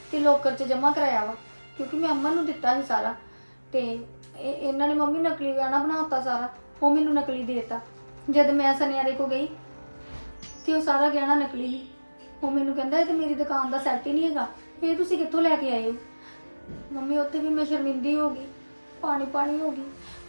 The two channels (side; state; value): both; inverted; correlation -1.00